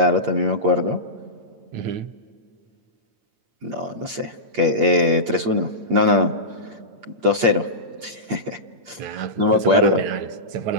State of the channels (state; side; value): late; left; 8.5 ms